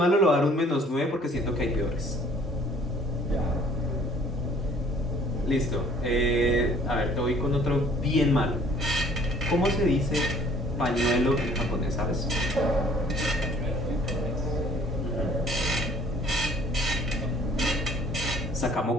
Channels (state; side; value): normal; both; correlation 0.56